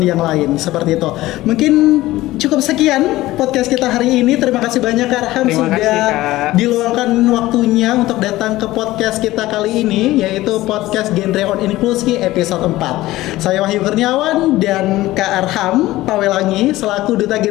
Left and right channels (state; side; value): quieter; right; 17.0 dB